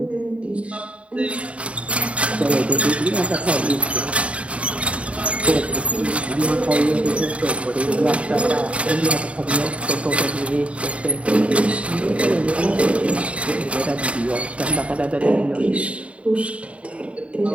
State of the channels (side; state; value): left; late; 0.063 ms